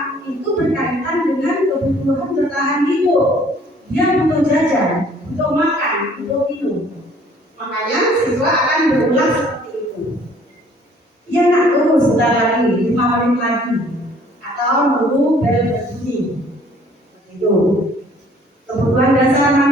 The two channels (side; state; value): both; normal; correlation 0.57